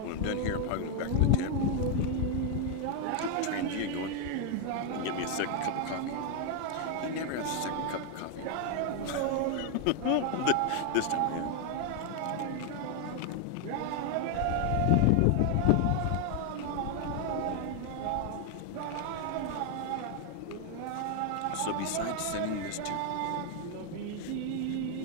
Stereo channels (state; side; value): different; both; correlation 0.00